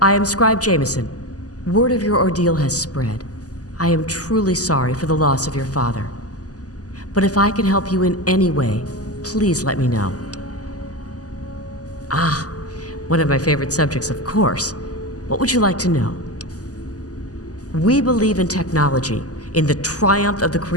am Scribe Jameson. Word of your ordeal has spread. I am truly sorry for the loss of your father. But if I can help you in any way, please let me know. Ah, one of my favorite subjects, of course. What would you like to know? We believe in technology, in the triumph of the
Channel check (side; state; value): right; late; 0.67 ms